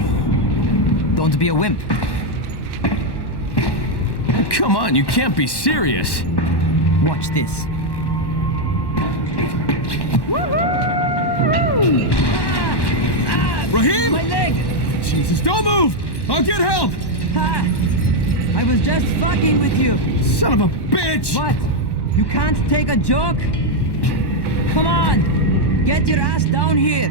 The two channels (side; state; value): right; late; 1.1 ms